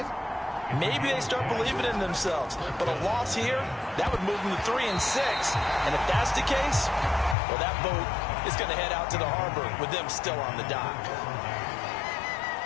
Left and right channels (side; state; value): right; drops out; at 7.4 s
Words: maybe they start believing in themselves. But a loss here, that would move them to 3-6. And if that's the case, well, that boat is going to head out to the harbor with them still on the dock.